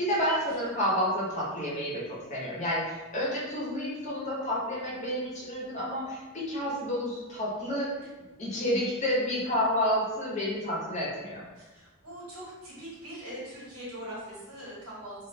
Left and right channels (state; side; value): normal; both; correlation 0.02